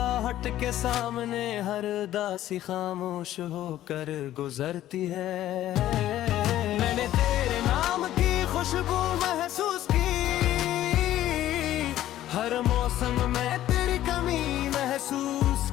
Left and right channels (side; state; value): right; quieter; 13.3 dB